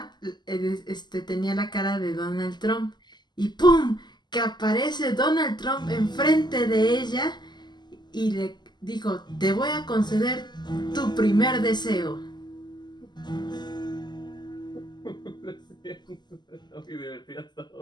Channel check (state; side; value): late; right; 0.21 ms